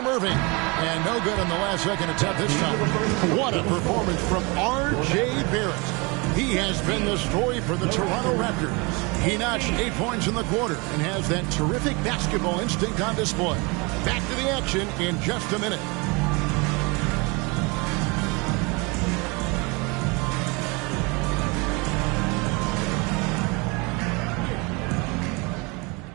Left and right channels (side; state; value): left; quieter; 28.3 dB